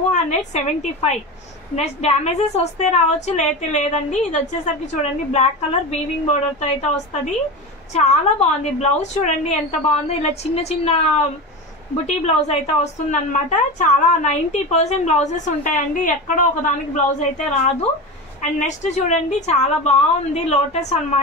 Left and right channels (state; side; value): normal; both; correlation 0.24